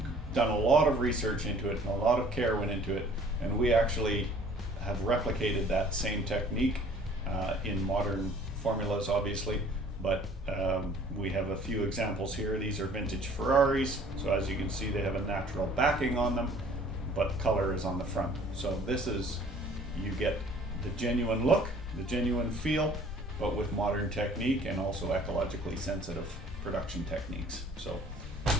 done a lot of research into it and a lot of care went into it, and we actually have replicated that same technique in modern formulas, obviously, but we have a few examples here. These are vintage Ferraris, so as you can see they have a natural backing on them, but color is on the front. So this is, you get the genuine look, the genuine feel, but with modern technique and also ecologically sensitive production techniques. So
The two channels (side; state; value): both; normal; correlation 0.53